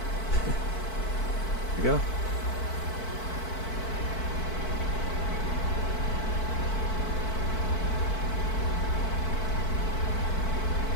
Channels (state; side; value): late; right; 4.5 ms